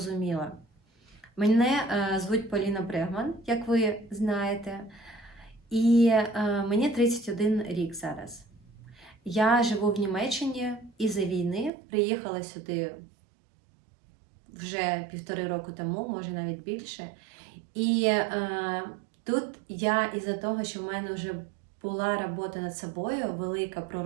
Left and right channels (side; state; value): left; drops out; at 11.7 s